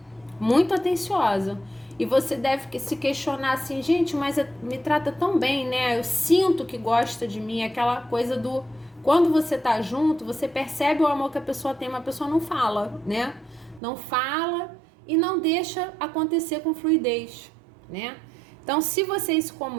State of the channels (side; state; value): left; drops out; at 13.8 s